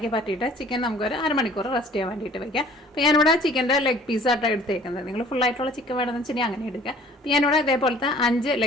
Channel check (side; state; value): both; normal; correlation 0.52